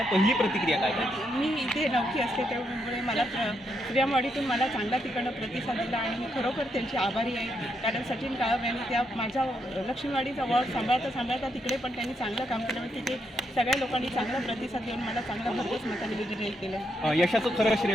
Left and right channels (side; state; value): both; normal; correlation 0.79